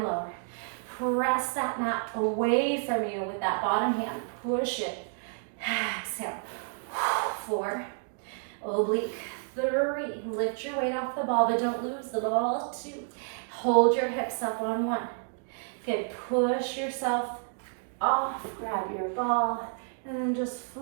lower. Press that mat away from you with that bottom hand, push it. Exhale. 4, oblique. 3, lift your weight off the ball, but don't lose the ball. 2, hold your hips up on 1. Good, push yourself off, grab your ball, and then just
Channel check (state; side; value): silent; left; 58 dB below the other